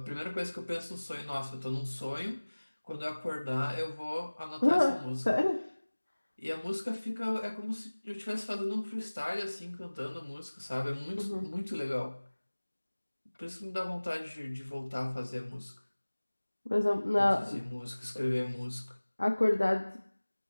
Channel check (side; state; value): both; inverted; correlation -1.00